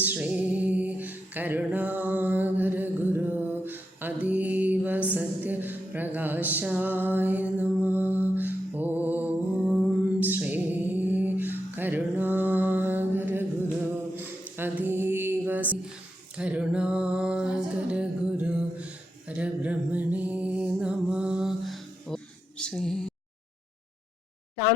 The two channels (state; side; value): normal; both; correlation 0.85